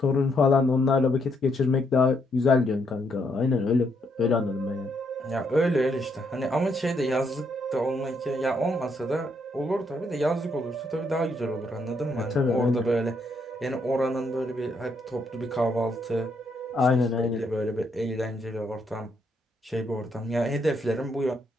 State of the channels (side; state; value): both; normal; correlation 0.75